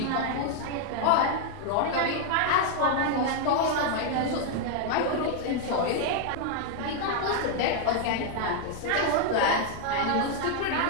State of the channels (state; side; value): different; both; correlation 0.00